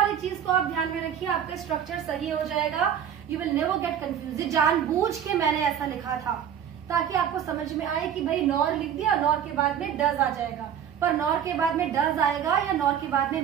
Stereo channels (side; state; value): left; quieter; 8.9 dB